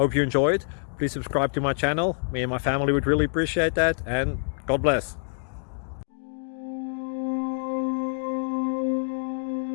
you enjoyed. Please subscribe to my channel. Me and my family would really appreciate that, and God bless.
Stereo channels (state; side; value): silent; right; digital silence